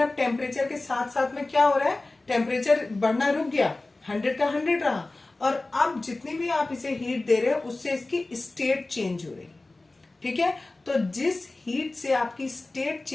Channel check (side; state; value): right; quieter; 3.1 dB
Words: टेम्परेचर के साथ साथ में क्या हो रहा है, टेम्परेचर बढ़ना रुक गया, 100 का 100 रहा, और अब जितनी भी आप इसे हीट दे रहे हो उससे इसकी स्टेट चेंज हो रही है, ठीक है। तो जिस हीट से आपकी स्टेट